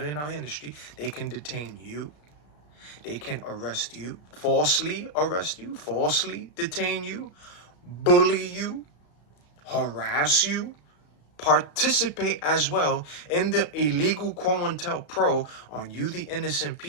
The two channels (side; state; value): right; late; 34 ms